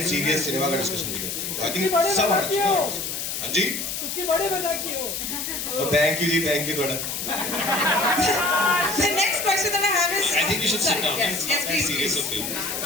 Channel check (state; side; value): noise; left; hiss, 4 dB below the sound